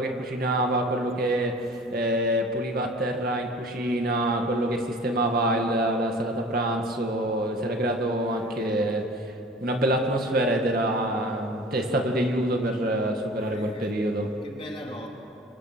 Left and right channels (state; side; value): normal; both; correlation 0.43